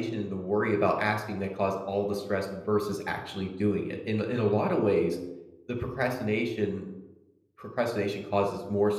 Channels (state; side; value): identical; both; correlation 1.00